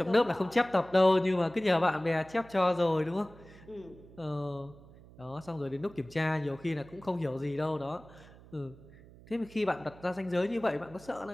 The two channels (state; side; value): noise; right; hum, 21 dB below the sound